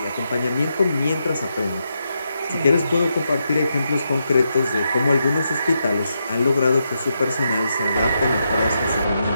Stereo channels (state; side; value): inverted; both; correlation -0.83